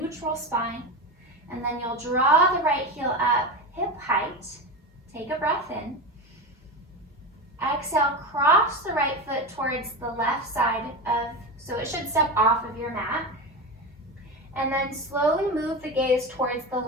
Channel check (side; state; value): both; normal; correlation 0.22